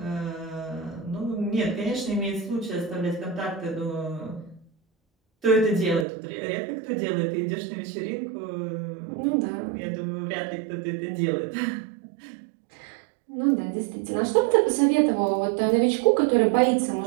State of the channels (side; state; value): left; drops out; at 6.1 s